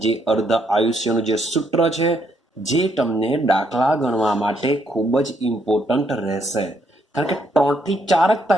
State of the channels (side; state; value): both; normal; correlation 0.73